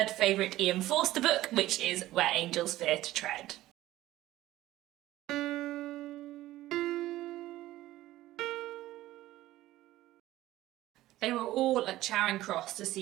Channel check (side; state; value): left; quieter; 15.7 dB